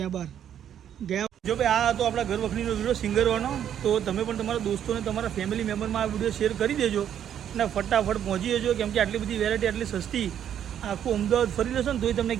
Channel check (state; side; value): quieter; left; 9.7 dB